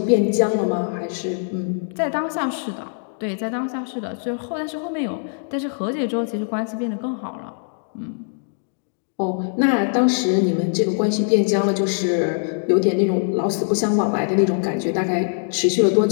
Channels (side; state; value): right; silent; digital silence